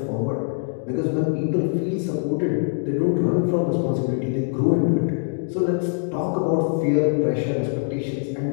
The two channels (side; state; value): right; silent; digital silence